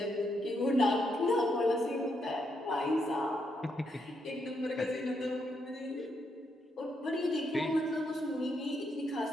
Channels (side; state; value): both; normal; correlation 0.78